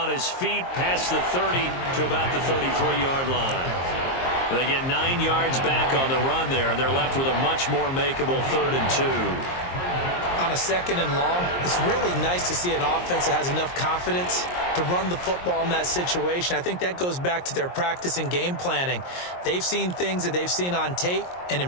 his feet past the 30 to about the 33-yard line. They get 9 yards back on the run there, and they're left with a much more makeable 3rd and 2. On a 2nd and long, it's really nice to see an offense that has enough confidence to run the football in that situation. I think that goes back to their practice and game planning. They've seen things that they've seen on tape and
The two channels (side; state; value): right; late; 22 ms